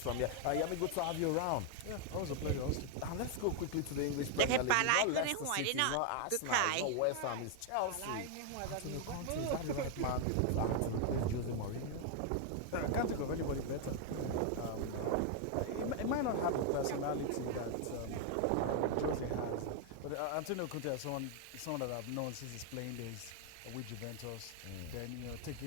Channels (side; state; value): both; different; correlation 0.00